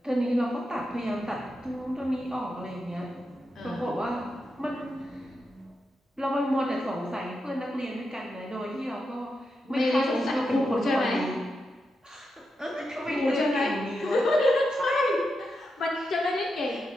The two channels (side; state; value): both; normal; correlation 0.86